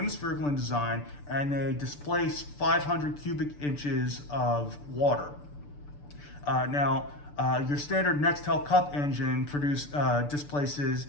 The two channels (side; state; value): right; late; 6.8 ms